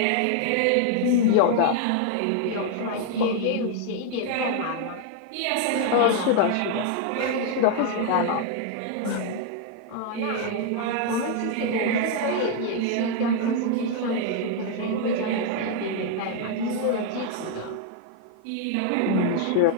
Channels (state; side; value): different; both; correlation 0.00